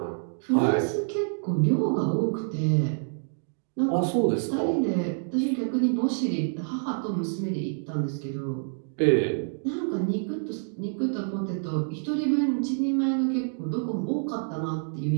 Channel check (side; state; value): left; silent; digital silence